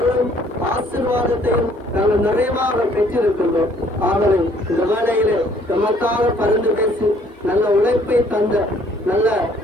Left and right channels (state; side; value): normal; both; correlation 0.61